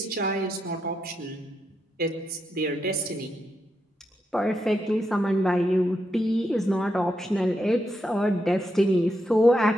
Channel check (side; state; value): both; normal; correlation 0.83